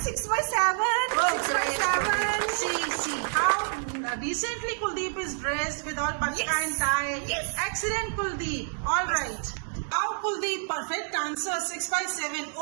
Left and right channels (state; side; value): silent; left; 59 dB below the other